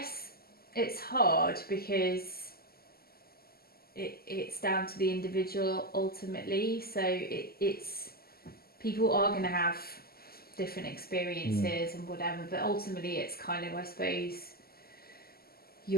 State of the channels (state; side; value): late; right; 0.45 ms